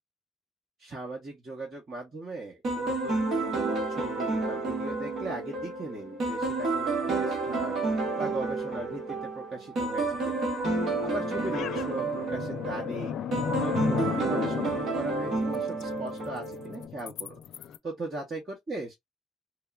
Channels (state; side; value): normal; both; correlation 0.60